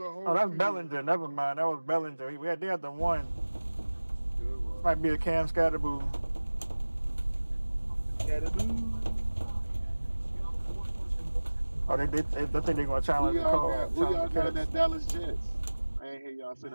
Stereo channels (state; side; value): inverted; both; correlation -1.00